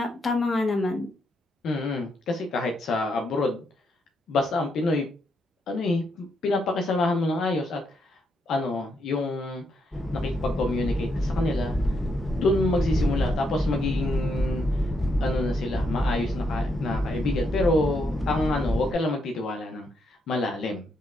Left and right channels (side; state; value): both; normal; correlation 0.79